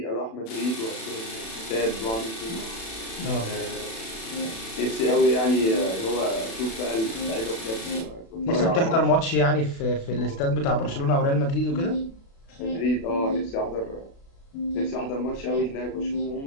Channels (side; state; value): right; late; 36 ms